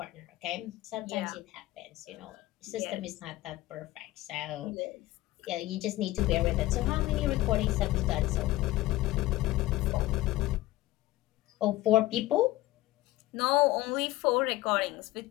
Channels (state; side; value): quieter; right; 17.3 dB